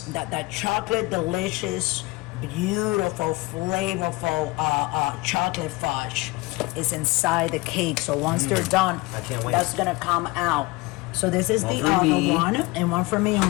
that chocolate delicious, beautiful, flavorful chocolate fudge is inside the cake. So once they're done, I can't wait. that's gonna come out. So this is One the for other me. one, and one for me and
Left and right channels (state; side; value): quieter; right; 22.4 dB